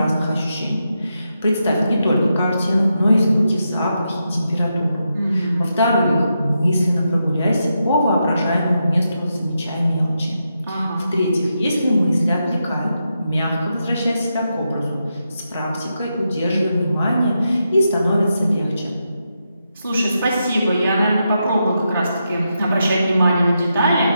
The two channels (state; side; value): inverted; both; correlation -0.85